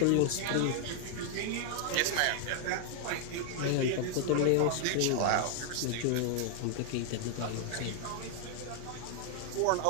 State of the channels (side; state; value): both; different; correlation 0.00